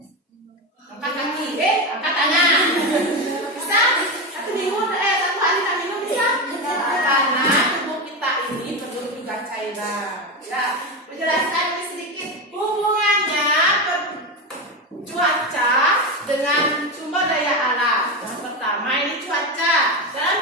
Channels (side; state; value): both; normal; correlation 0.16